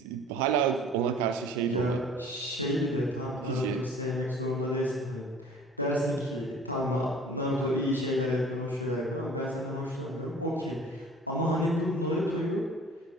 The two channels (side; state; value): both; normal; correlation 0.47